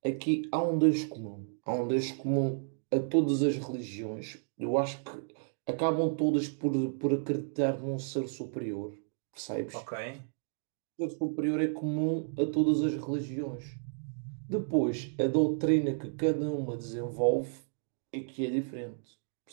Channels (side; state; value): left; silent; digital silence